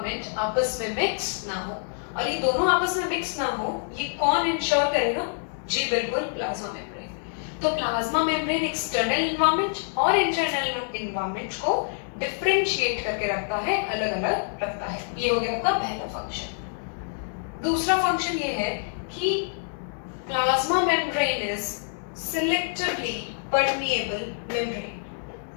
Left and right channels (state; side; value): silent; right; digital silence